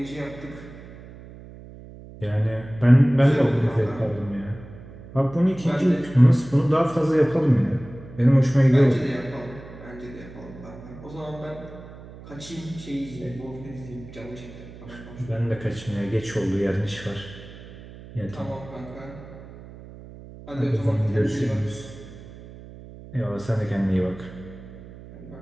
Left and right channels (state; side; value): noise; right; hum, 17 dB below the sound